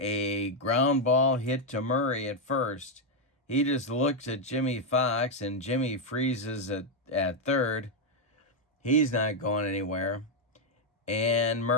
ground ball hit to Murray at first. He just looks at Jimmy Fox, and Jimmy freezes at third. He's not going anywhere. And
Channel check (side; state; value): both; normal; correlation 0.01